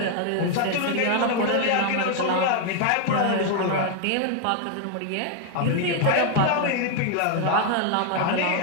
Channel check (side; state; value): both; different; correlation 0.00